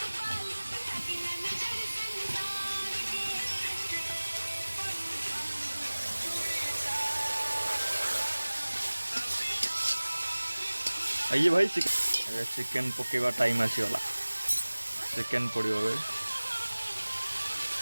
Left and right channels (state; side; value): inverted; both; correlation -1.00